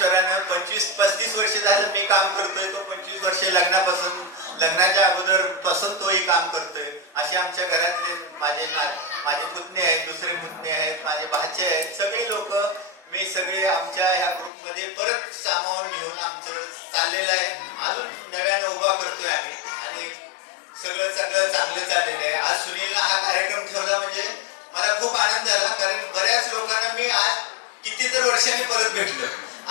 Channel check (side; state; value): right; drops out; at 14.5 s